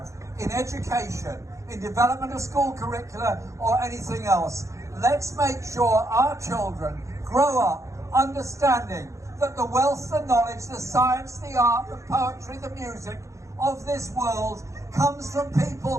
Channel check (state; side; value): late; left; 0.15 ms